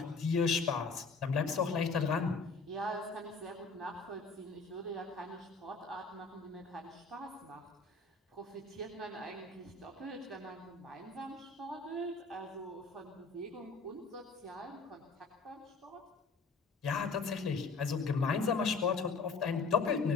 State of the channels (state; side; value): quieter; right; 4.2 dB